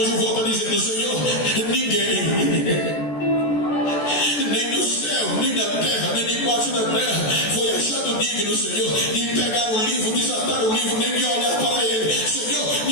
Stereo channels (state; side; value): late; right; 14 ms